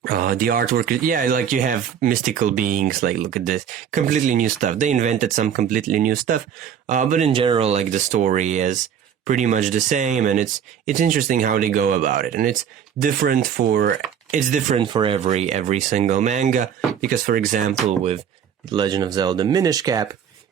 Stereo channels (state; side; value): quieter; left; 8.5 dB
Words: the artwork, like you have mystical beings, like look at this, completely new stuff. They invented some completely new stuff, but in general, like the story is pretty much the same, and it's interesting how they go about it, and it's different for every single manga, because for example, with Legend of Zelda Minish Cap,